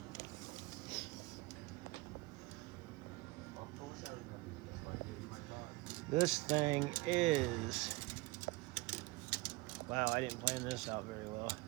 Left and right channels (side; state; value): left; quieter; 21.9 dB